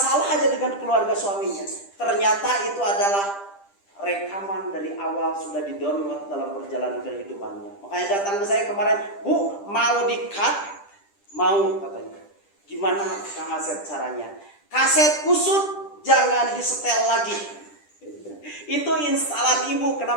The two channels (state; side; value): late; right; 10 ms